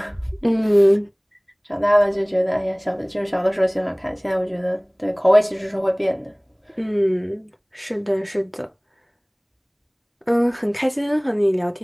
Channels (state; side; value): identical; both; correlation 1.00